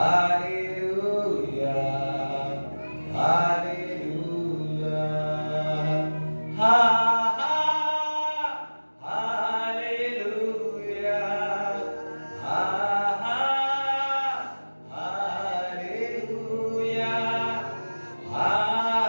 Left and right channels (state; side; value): inverted; both; correlation -1.00